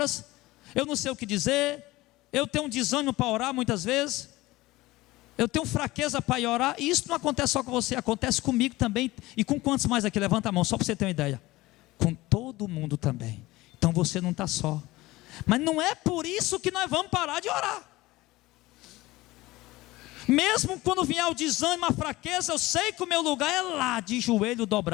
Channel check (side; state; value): right; quieter; 19.2 dB